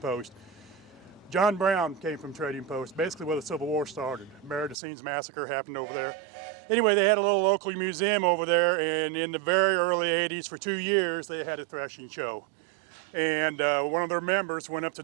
John Brown came from Trading Post, basically where the Civil War started. Maridicines Massacre happened over there. Anyway, they had a little local museum over there, and in the very early 80s, for 2 years, they had a threshing show. And one of their members went up to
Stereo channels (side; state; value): left; drops out; at 4.8 s